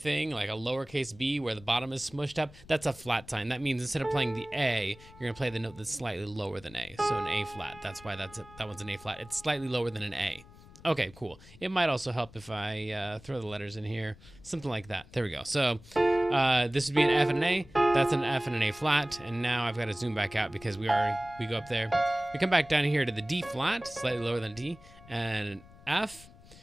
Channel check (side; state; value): left; noise; rumble, 21 dB below the sound